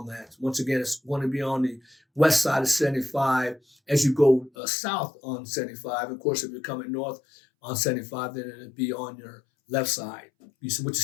that. Once again, it's going to be on the west side of 75 as you go south on 75. Of course, if you're coming north on 75, then it'll be on your left side, which is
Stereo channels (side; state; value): right; drops out; at 4.5 s